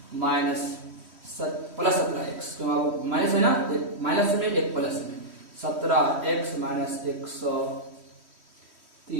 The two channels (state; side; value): late; left; 3.1 ms